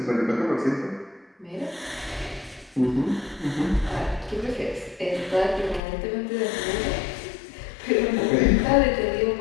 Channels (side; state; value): right; drops out; at 5.8 s